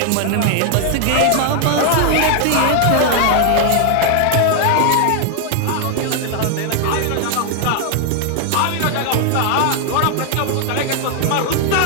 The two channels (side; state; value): both; different; correlation 0.00